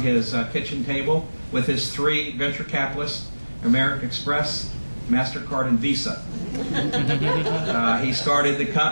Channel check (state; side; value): inverted; both; correlation -1.00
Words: his kitchen table with his 3 venture capitalists, American Express, MasterCard, and Visa. He started the